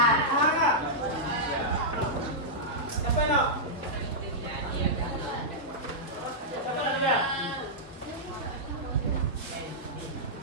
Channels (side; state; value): both; normal; correlation -0.11